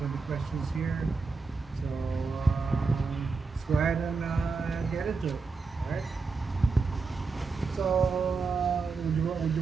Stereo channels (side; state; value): left; quieter; 4.4 dB